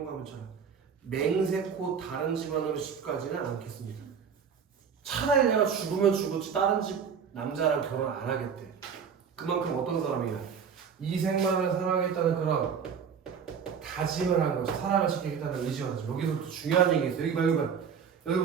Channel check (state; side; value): quieter; left; 6.9 dB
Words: 맹세코 다른 집안으로 집까지는 않겠습니다. 차라리 내가 죽으면 죽었지 다른 집 남자랑 결혼 안 하겠대. 그만큼 어떤 사람이야? 이생만을 사랑하겠다는 그런 다짐을 한 거죠. 사랑을 지키겠다는 의지가 나죠. 여기서부터 중요한 얘기가 있어.